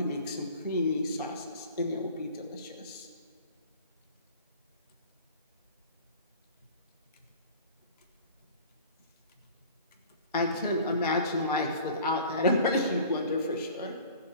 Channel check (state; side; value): inverted; both; correlation -0.44